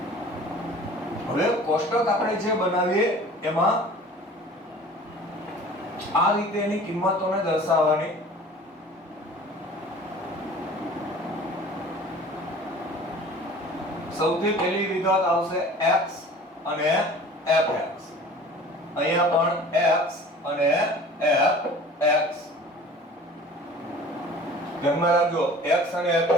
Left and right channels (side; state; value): both; normal; correlation 0.44